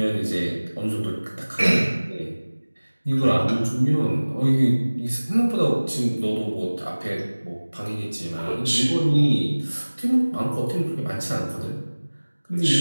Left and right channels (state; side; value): inverted; both; correlation -1.00